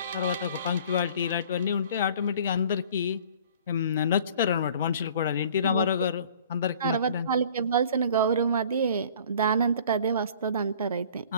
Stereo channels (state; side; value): inverted; both; correlation -0.50